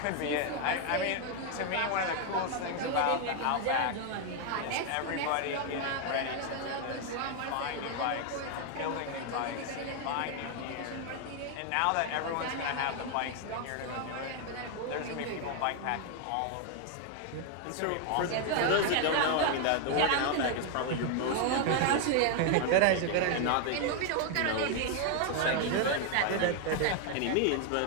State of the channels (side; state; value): both; different; correlation 0.00